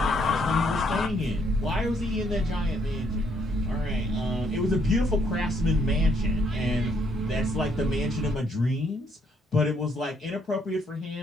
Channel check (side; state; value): both; normal; correlation 0.70